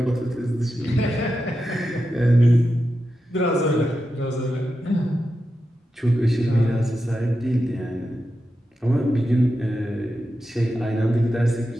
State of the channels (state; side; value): normal; both; correlation 0.89